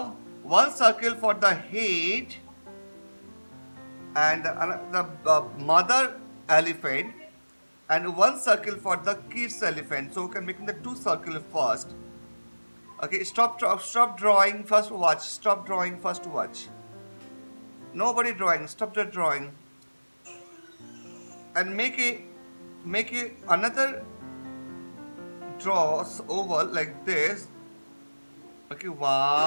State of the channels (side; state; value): both; inverted; correlation -1.00